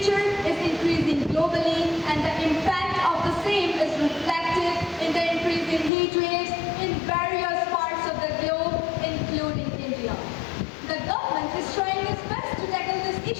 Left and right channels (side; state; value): right; drops out; at 5.9 s